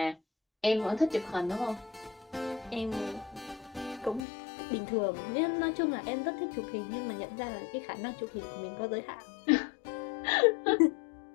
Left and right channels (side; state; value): right; drops out; at 4.2 s